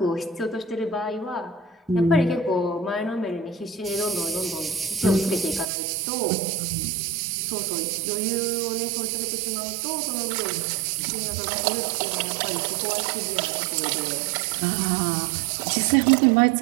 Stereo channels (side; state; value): left; drops out; at 5.7 s